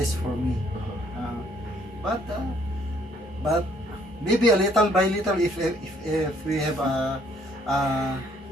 for me. But maybe a little by little if we have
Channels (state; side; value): normal; both; correlation 0.64